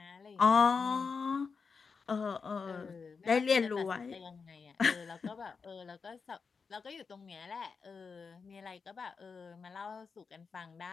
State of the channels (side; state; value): right; quieter; 5.2 dB